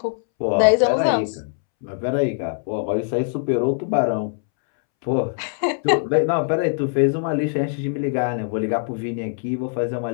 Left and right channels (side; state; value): right; silent; 64 dB below the other